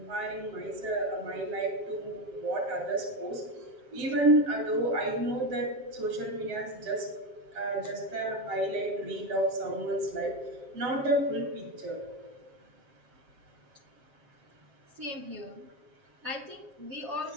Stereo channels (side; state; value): left; late; 7.5 ms